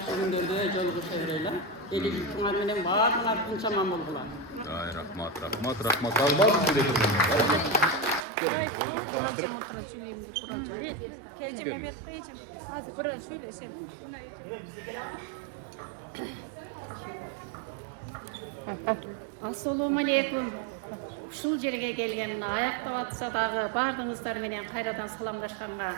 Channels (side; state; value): left; drops out; at 8.2 s